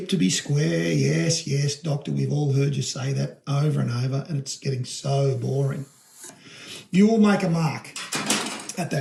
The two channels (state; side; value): identical; both; correlation 1.00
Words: to be square. Yes, doctor, we've all heard you say that over and over, and it's getting so boring. You will make a mark at